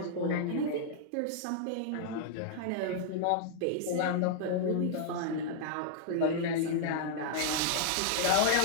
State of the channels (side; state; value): both; different; correlation -0.01